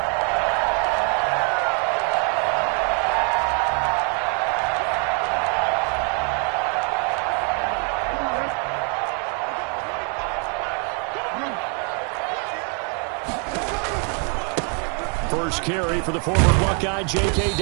First carry for the former Buckeye, J.K.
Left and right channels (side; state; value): left; quieter; 39.0 dB